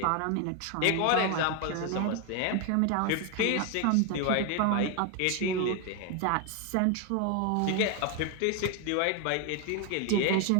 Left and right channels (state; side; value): different; both; correlation 0.01